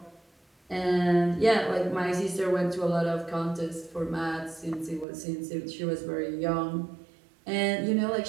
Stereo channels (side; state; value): left; drops out; at 5.1 s